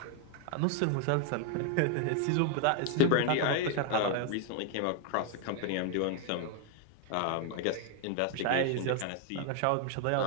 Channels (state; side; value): different; both; correlation 0.00